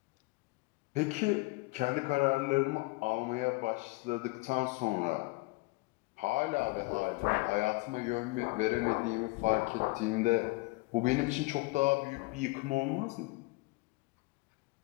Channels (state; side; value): quieter; right; 24.6 dB